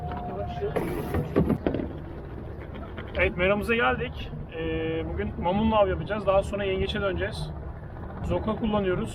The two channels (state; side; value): identical; both; correlation 1.00